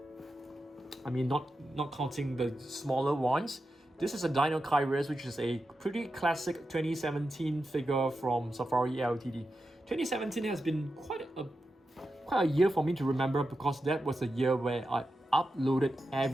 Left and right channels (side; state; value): both; normal; correlation 0.90